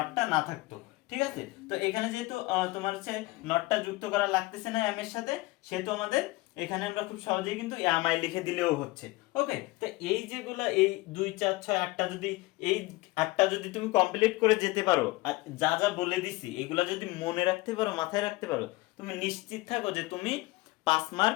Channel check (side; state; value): right; quieter; 20.8 dB